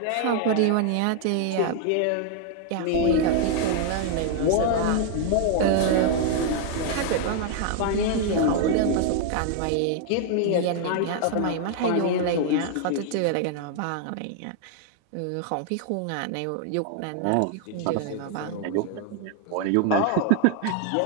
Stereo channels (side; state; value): both; different; correlation 0.00